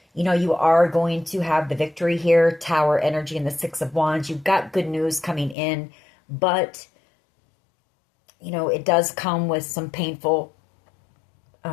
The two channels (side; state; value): right; drops out; at 5.6 s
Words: You are going to have the victory here. Tower energy and the 6 of Wands. You've got good news coming in. But, it does come with some painful